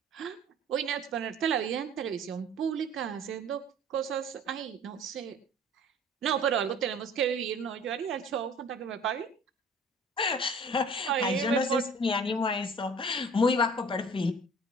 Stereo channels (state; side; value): normal; both; correlation 0.48